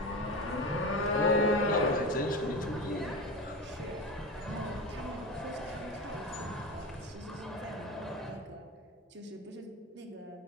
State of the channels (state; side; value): normal; both; correlation 0.25